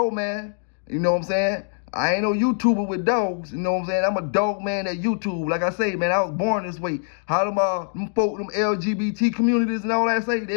man. You know what I'm saying? I ain't no YouTuber with dogs. You know what I'm saying? I'm a dog man at YouTube. Like I say, man, I was born this way. How them folk, them LGBT communities and all that say,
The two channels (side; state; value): right; silent; digital silence